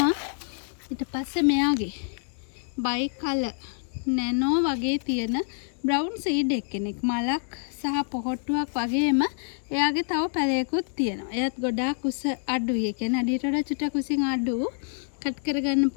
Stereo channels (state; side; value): silent; right; 58 dB below the other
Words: ඊට පස්සේ මෙයාගේ බයි කලර් නැනෝ වගේ තියෙන බ්‍රවුන් සීඩ් එක්කෙනෙක්. මලක් සහ පොහොට්ටුවක් වගේම එයාගේ තව පැලයකුත් තියෙනවා. එයාත් ගොඩාක් උස අඩුයි. ඒ කියන්නේ අඩියට වඩා චුට්ටක් උසින් අඩු කට් කරගන්න